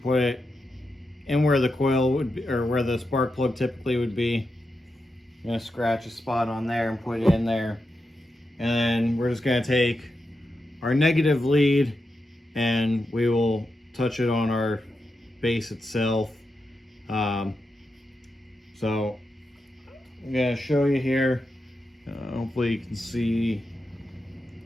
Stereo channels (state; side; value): normal; both; correlation 0.87